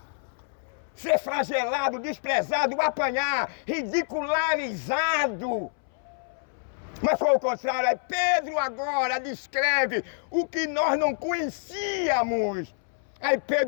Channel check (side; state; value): right; silent; 60 dB below the other